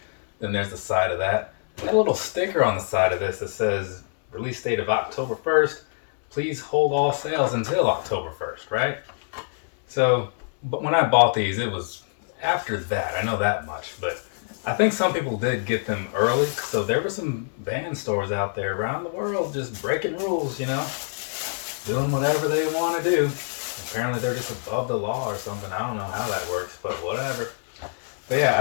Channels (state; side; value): silent; right; 62 dB below the other